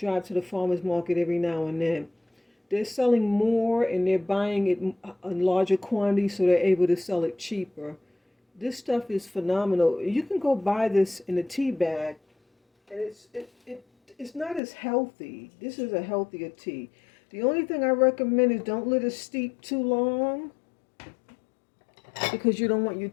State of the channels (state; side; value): drops out; right; at 14.6 s